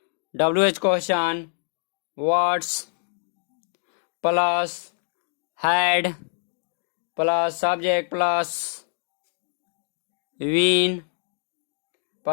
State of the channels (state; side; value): silent; right; digital silence